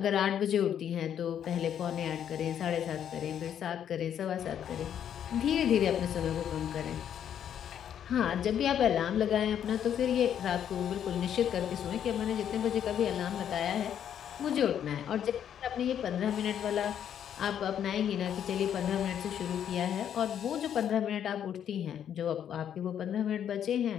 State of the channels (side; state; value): right; quieter; 9.4 dB